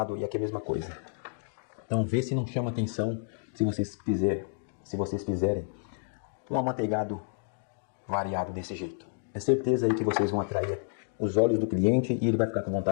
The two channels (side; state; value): right; silent; 58 dB below the other